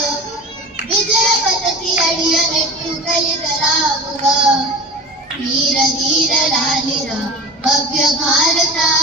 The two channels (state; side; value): normal; both; correlation 0.33